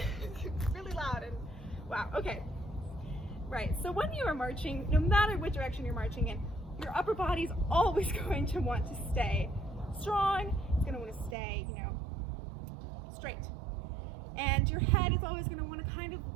really loud and wow. Okay. Right, so when you are marching, no matter what direction you're marching in, your upper body's always going to want to stay strong. It's going to want to stay, you know, straight. And your head is always going to want to kind of,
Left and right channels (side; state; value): left; drops out; at 11.4 s